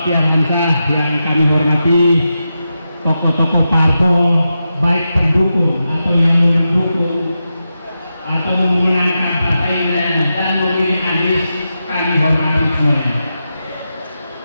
Hamzah yang kami hormati, tokoh-tokoh parpol, baik pendukung atau yang mendukung atau memenangkan partai dan memilih Anies, kami hormati semuanya.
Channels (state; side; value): inverted; both; correlation -0.89